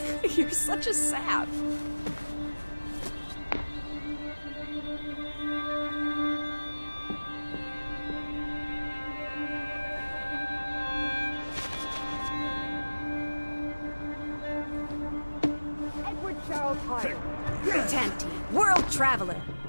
You're such a sap. Edward Charles Hyde. Tanty, world traveler,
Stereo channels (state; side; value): inverted; both; correlation -1.00